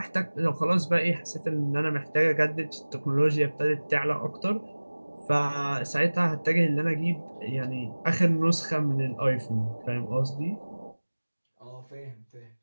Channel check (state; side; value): inverted; both; correlation -1.00